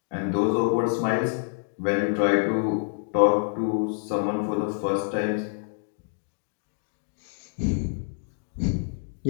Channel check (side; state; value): right; silent; digital silence